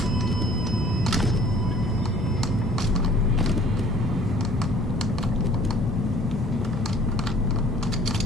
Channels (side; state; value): both; normal; correlation 0.53